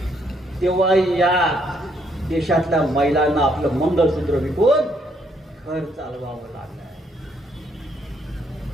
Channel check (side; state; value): both; normal; correlation 0.71